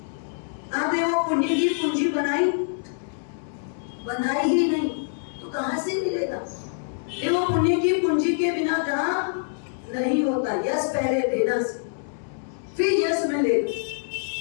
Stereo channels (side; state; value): right; silent; digital silence